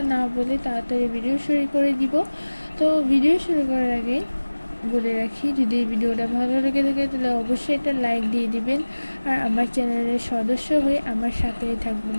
না বলে তাড়াতাড়ি ভিডিও শুরু করে দিব। তো ভিডিও শুরু করার আগে বলে রাখি, যদি এই ভিডিওটা ভালো লেগে থাকে তাহলে অবশ্যই একটা লাইক দিয়ে দিবেন আর আমার চ্যানেলের সদস্য হয়ে আমার সাথেই থাকবেন।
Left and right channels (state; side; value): inverted; both; correlation -1.00